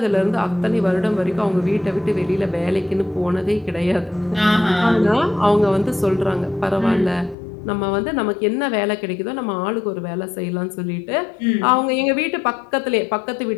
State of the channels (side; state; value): right; drops out; at 7.4 s